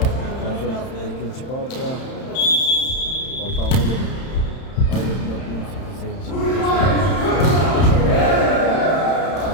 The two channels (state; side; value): late; right; 31 ms